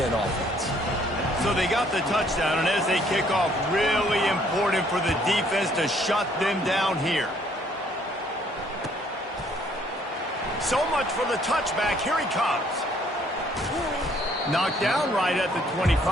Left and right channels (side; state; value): both; normal; correlation 0.63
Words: offense. So they got the touchdown, and as they kick off, really important for the defense to shut them down here. So much for the touchback. Here he comes. Knocked down right at the